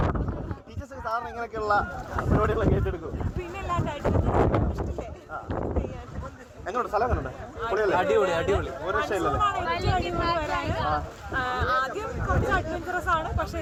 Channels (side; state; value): both; identical; correlation 1.00